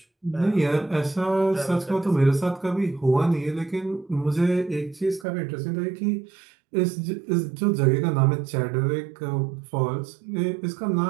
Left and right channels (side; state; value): left; drops out; at 5.2 s